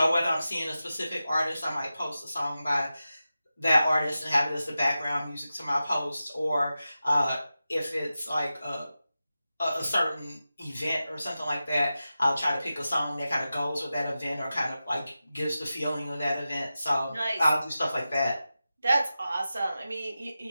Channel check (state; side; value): inverted; both; correlation -0.93